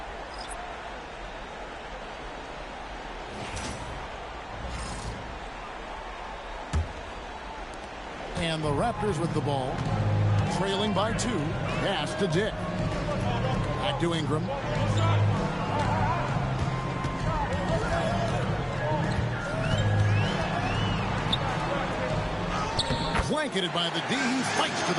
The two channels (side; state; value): both; identical; correlation 1.00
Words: And the Raptors with the ball, trailing by 2. Pass to Dick. Back to Ingram. Blanketed by the D. He fights to